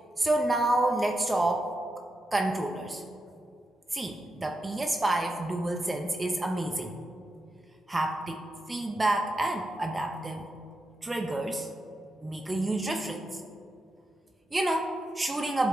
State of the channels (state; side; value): normal; both; correlation 0.87